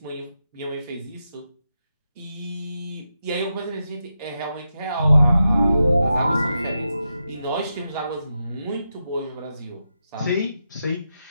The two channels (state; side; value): inverted; both; correlation -0.87